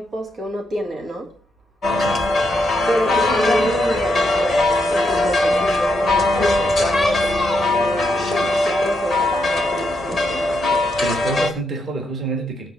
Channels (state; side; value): normal; both; correlation 0.80